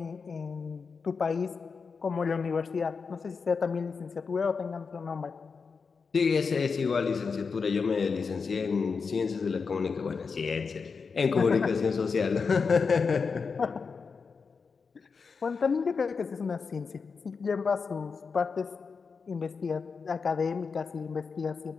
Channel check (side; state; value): right; quieter; 5.2 dB